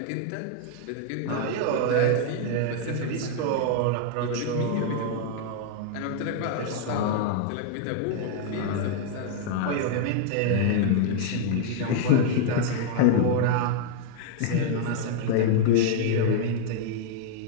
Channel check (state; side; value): different; both; correlation 0.00